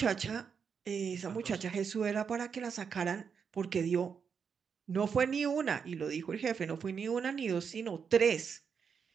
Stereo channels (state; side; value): quieter; left; 6.5 dB